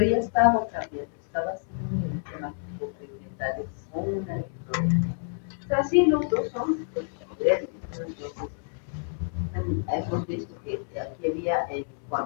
ya estaba cambiando, estaba haciendo un eritema pigmentario con una eritrodermia. O sea, sí, los dos son toxicodermias, ¿no? Entonces, hemos visto que aquí había, en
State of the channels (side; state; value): right; silent; digital silence